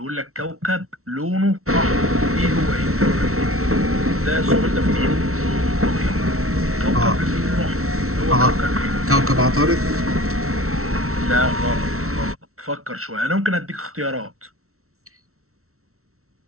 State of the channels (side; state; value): left; late; 0.63 ms